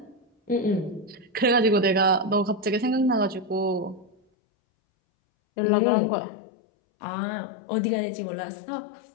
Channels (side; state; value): right; drops out; at 4.2 s